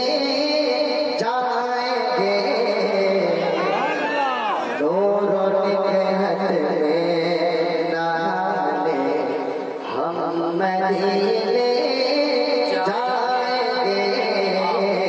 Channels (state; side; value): identical; both; correlation 1.00